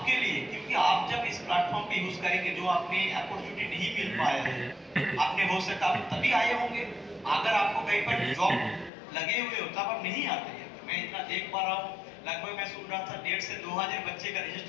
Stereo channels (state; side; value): drops out; right; at 8.9 s